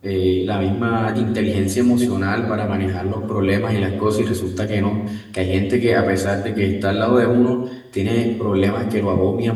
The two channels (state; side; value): identical; both; correlation 1.00